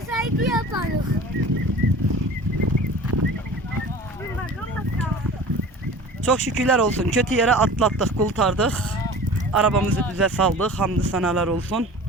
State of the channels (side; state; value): both; normal; correlation 0.40